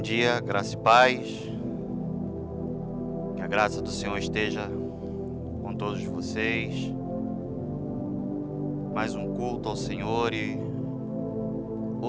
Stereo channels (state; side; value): identical; both; correlation 1.00